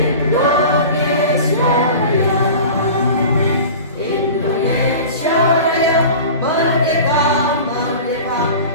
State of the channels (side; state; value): both; inverted; correlation -0.37